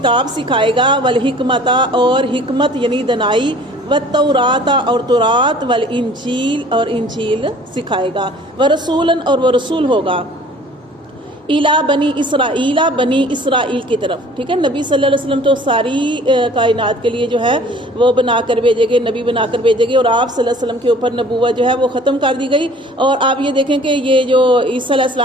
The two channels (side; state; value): both; normal; correlation 0.50